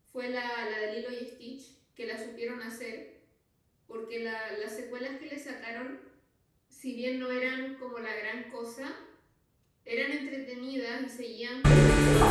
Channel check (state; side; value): identical; both; correlation 1.00